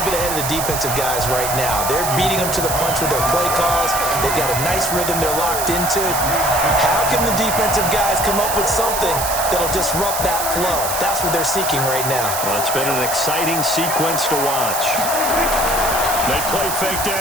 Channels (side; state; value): right; noise; hiss, 3 dB below the sound